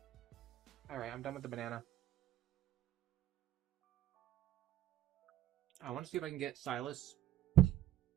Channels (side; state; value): left; quieter; 13.2 dB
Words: Alright, I'm done with the banana. I want to see if I can get Silas